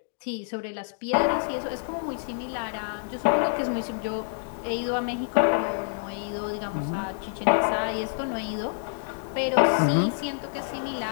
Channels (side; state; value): right; silent; digital silence